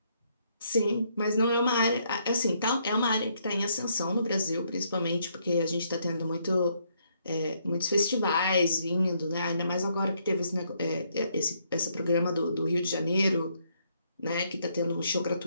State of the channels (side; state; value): both; inverted; correlation -0.72